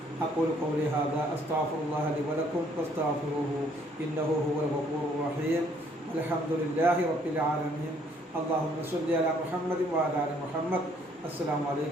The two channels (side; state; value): both; normal; correlation 0.64